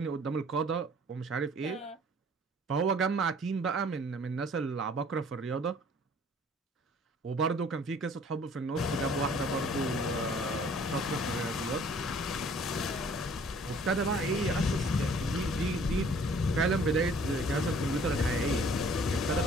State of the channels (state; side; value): normal; both; correlation 0.55